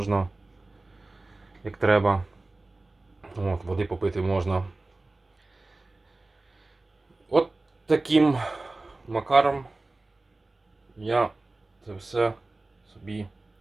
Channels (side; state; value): left; quieter; 3.1 dB